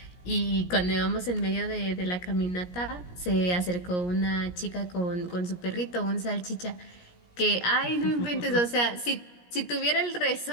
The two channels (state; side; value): late; right; 17 ms